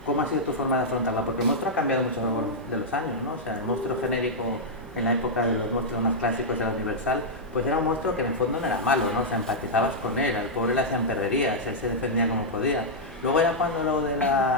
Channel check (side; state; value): both; normal; correlation -0.07